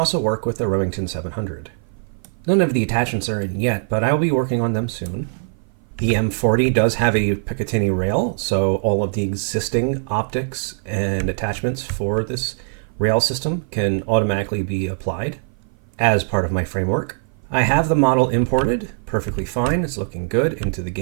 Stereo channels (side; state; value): left; silent; 58 dB below the other